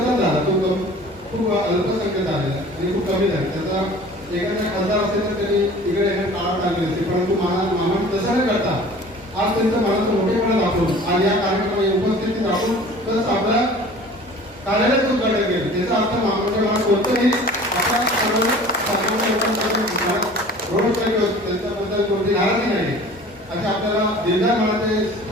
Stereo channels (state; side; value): normal; both; correlation 0.45